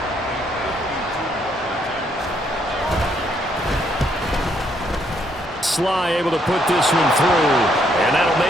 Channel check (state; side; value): normal; both; correlation 0.72